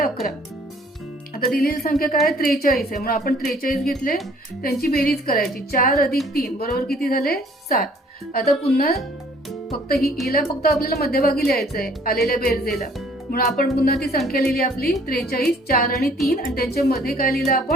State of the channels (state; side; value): normal; both; correlation 0.58